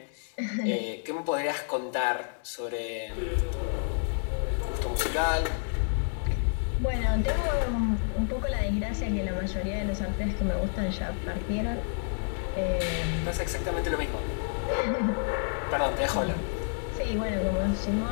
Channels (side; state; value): right; silent; digital silence